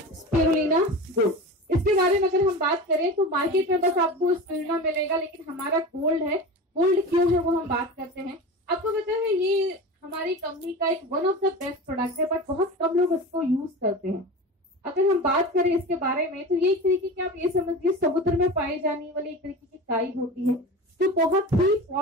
स्पिरुलिना गोल्ड। इसके बारे में अगर हम बात करें तो मार्केट में बस आपको स्पिरुलिना मिलेगा, लेकिन हमारा गोल्ड है। गोल्ड क्यों है वो हम बात करते हैं। आपको पता है ये हमारी कंपनी का एक one of the best product है, बट बहुत कम लोग इसको यूज करते हैं। अगर हम बात करें इसके बारे में तो ये एक तरीके की, आप ये समझिए समुद्र में पाई जाने वाली एक तरीके की काई होती है जो बहुत ही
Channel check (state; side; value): normal; both; correlation 0.31